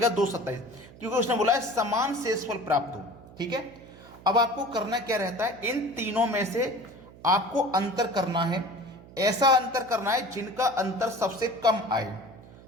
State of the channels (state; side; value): noise; right; hum, 20 dB below the sound